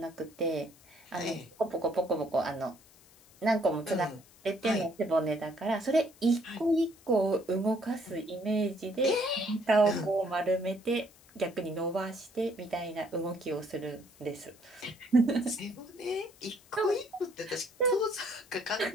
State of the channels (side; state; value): left; noise; hiss, 26 dB below the sound